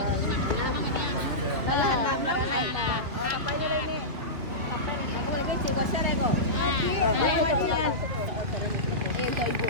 Aku lagi cikgu share ko. Kayak ibu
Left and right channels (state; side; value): late; left; 2.9 ms